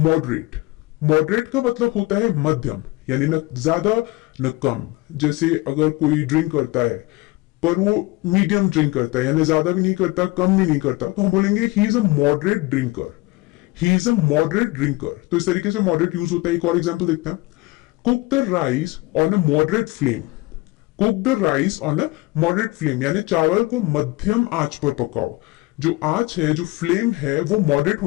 Moderate का मतलब होता है मध्यम, यानी न ज्यादा न कम। जैसे अगर कोई ड्रिंक करता है पर वो मीडियम ड्रिंक करता है, यानी ज्यादा भी नहीं करता कम भी नहीं करता, तो हम बोलेंगे he is a moderate drinker. He is a moderate drinker. तो इस तरीके से मॉडरेट यूज होता है। एक और एग्जांपल देखते हैं। Cook the rice on a moderate flame. Cook the rice on a moderate flame, यानी चावल को मध्यम आंच पर पकाओ। जो आंच है, जो फ्लेम है, वो मॉडरेट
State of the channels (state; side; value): quieter; right; 21.3 dB